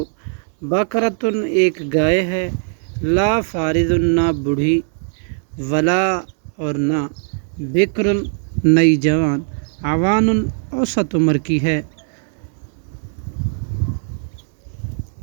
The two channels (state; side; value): silent; left; 66 dB below the other